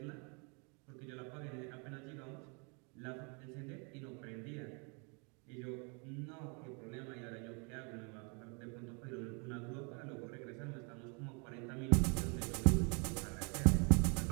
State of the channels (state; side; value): quieter; left; 34.3 dB